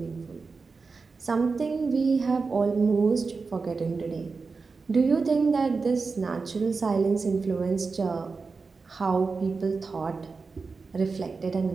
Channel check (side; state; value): left; quieter; 4.5 dB